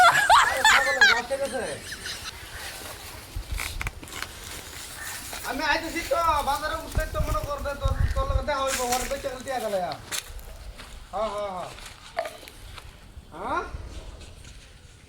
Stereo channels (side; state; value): both; identical; correlation 1.00